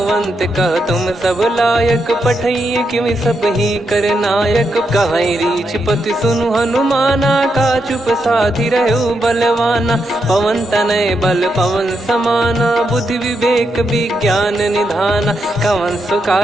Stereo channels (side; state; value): both; normal; correlation 0.82